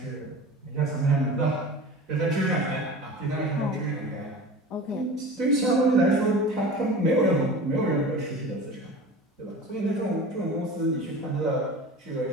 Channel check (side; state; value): both; normal; correlation 0.35